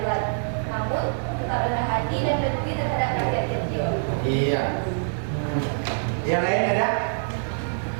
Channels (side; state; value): left; silent; digital silence